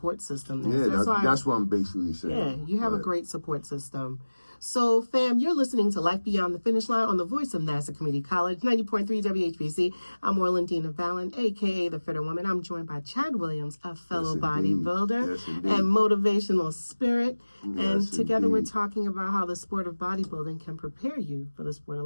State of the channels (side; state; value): both; inverted; correlation -1.00